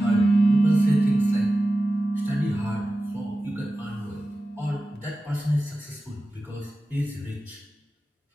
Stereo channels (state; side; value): normal; both; correlation 0.94